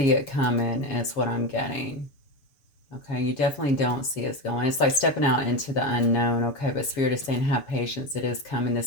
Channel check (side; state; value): right; late; 7.0 ms